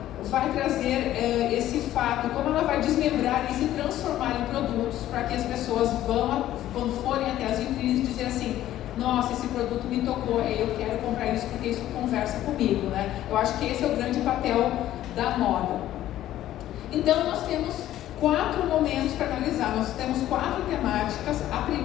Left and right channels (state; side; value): quieter; right; 13.2 dB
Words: vai trazer esse fato, como ela vai desmembrar e se transformar em produtos para que as pessoas vão, quando forem até as vitrines, dizer assim, nossa, esse produto me tocou, eu quero comprar isso porque isso conversa comigo, né? Eu acho que esse é o grande papel da moda. Então, nós temos 4 momentos para analisar, nós temos 4 temáticas. A